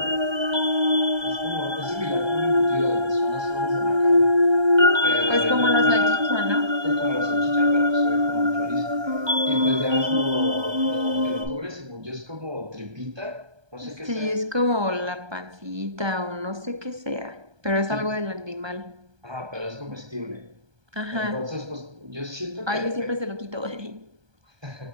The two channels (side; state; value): left; late; 1.2 ms